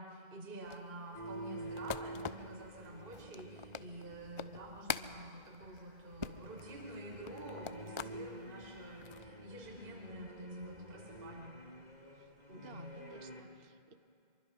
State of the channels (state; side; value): late; left; 1.4 ms